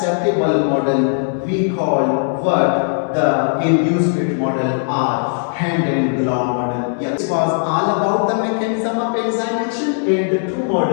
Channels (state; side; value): silent; right; 60 dB below the other